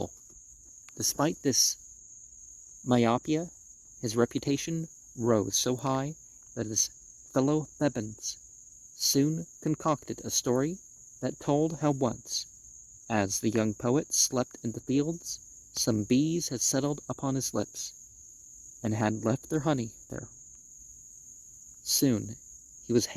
Despite this myopia, his reputation rose so high that his fellow Thebans soon concocted a story that told how once, as the young poet slept in the fields, some bees had settled upon his lips and had left their honey there. Soon he was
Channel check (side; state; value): both; identical; correlation 1.00